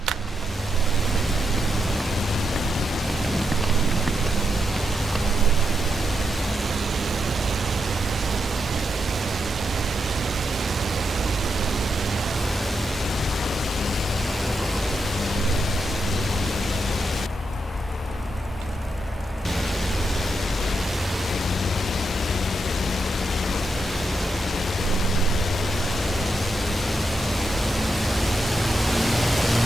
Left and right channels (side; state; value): both; normal; correlation 0.84